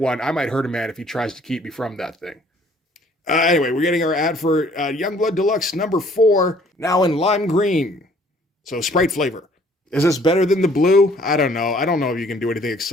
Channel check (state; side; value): normal; both; correlation 0.58